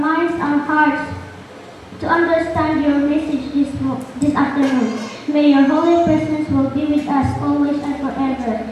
our hearts to understand your message this afternoon. May your holy presence will be with us always and forever.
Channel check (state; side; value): identical; both; correlation 1.00